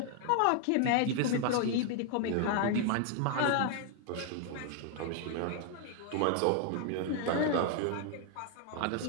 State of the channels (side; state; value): both; different; correlation 0.00